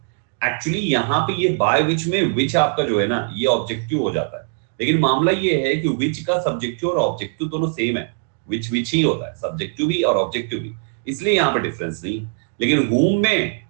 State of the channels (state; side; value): silent; left; digital silence